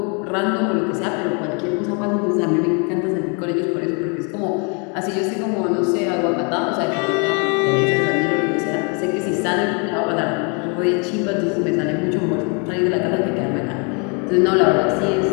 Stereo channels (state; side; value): quieter; right; 35.5 dB